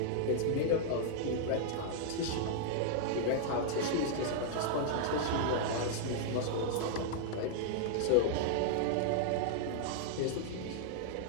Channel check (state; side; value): different; both; correlation -0.01